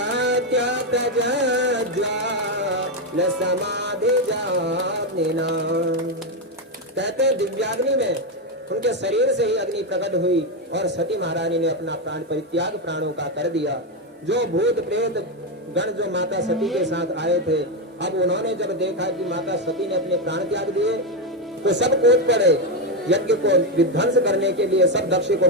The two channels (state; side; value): normal; both; correlation 0.07